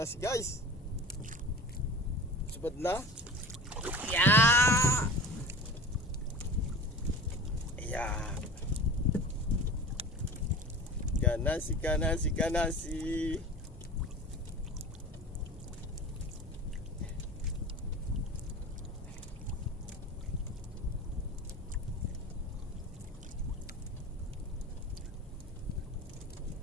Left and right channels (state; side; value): normal; both; correlation 0.36